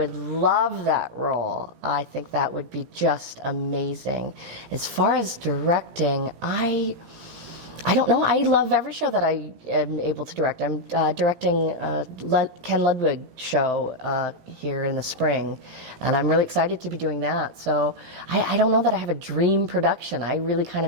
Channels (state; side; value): late; left; 17 ms